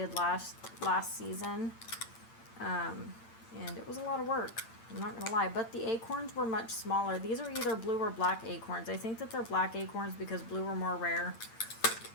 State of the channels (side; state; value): right; late; 8.9 ms